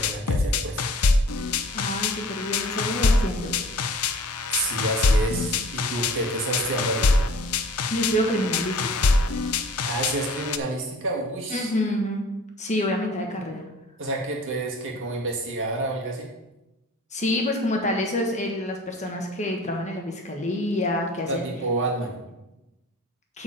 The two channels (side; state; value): both; normal; correlation 0.47